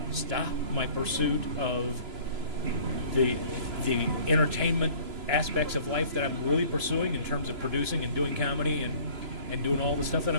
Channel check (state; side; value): late; left; 3.0 ms